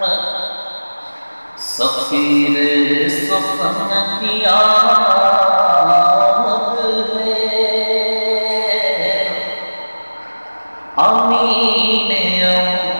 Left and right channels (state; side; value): inverted; both; correlation -1.00